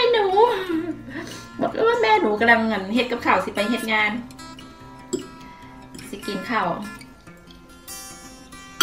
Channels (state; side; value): identical; both; correlation 1.00